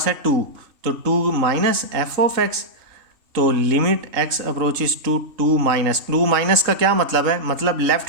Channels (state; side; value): late; left; 3.7 ms